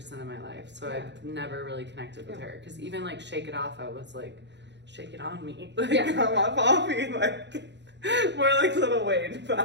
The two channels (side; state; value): left; late; 0.51 ms